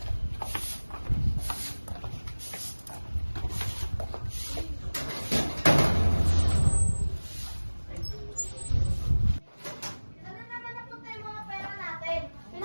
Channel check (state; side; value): inverted; both; correlation -1.00